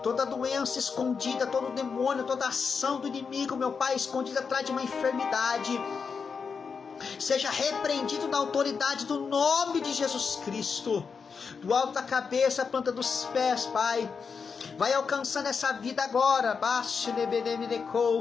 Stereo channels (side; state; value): right; quieter; 5.7 dB